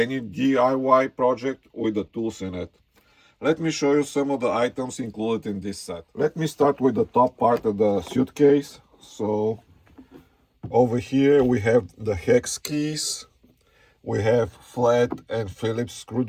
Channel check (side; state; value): both; identical; correlation 1.00